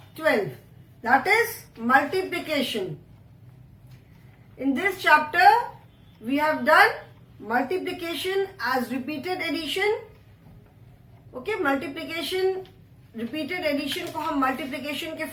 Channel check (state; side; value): identical; both; correlation 1.00